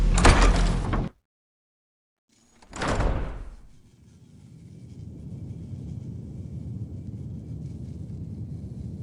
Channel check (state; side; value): identical; both; correlation 1.00